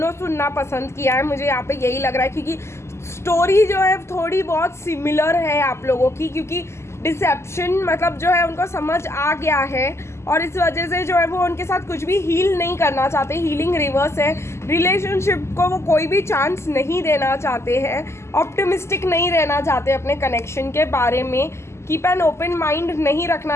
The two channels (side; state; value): right; late; 0.13 ms